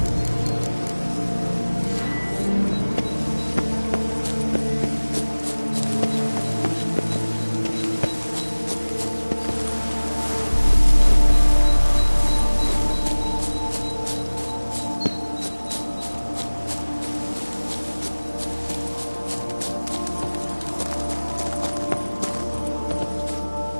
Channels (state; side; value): inverted; both; correlation -1.00